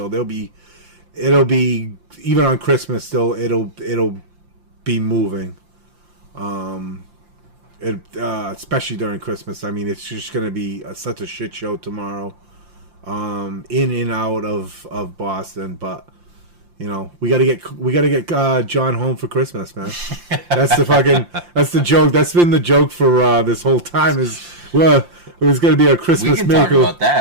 it'll be even on Christmas still it'll be moving. Especially during Christmas. I mean, it's just gonna be such a shit show tomorrow. In and out of Boston, but we gotta get John home for Christmas, man. That's the joke. That's been the joke for this whole time. It was gonna be a Christmas miracle. We can talk about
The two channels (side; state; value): left; late; 5.7 ms